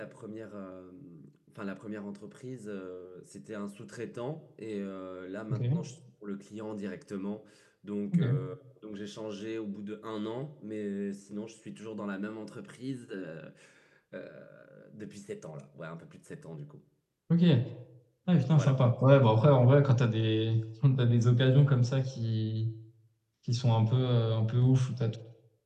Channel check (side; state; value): both; identical; correlation 1.00